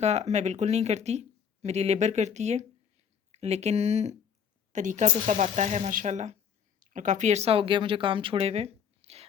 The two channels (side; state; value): right; quieter; 7.4 dB